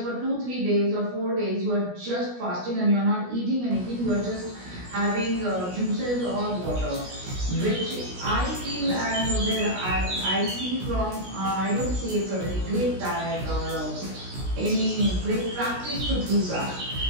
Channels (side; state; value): left; late; 16 ms